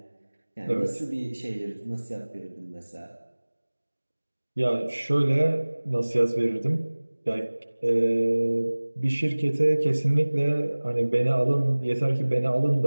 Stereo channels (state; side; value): inverted; both; correlation -1.00